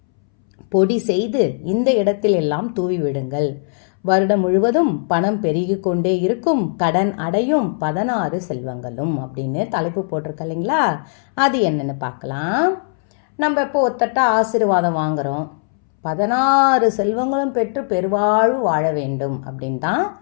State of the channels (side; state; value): right; silent; 65 dB below the other